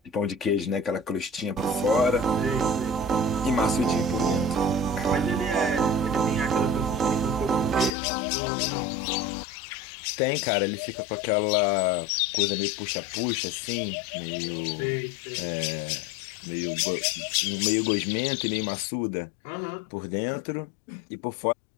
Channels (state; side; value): drops out; right; at 7.9 s